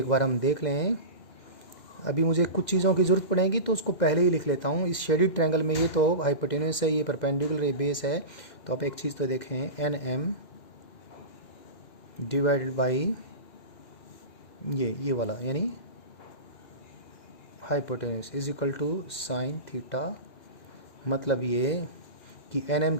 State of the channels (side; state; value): right; late; 2.0 ms